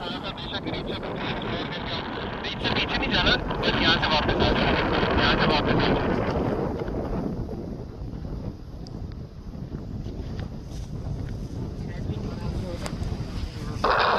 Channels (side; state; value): both; identical; correlation 1.00